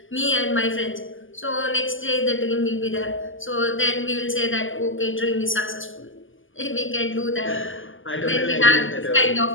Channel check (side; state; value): right; late; 0.58 ms